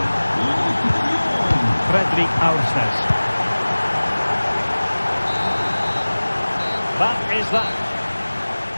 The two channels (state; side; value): inverted; both; correlation -1.00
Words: Fredrik Aursnes. That is that.